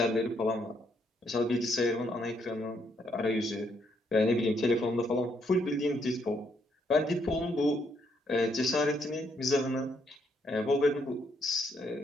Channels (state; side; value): normal; both; correlation 0.73